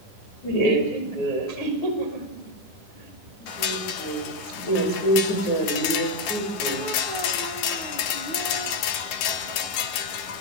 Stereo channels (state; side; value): late; right; 11 ms